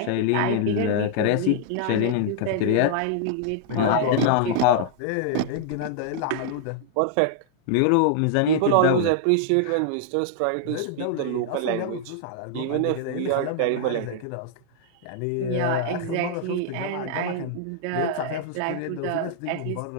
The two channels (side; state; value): both; different; correlation -0.01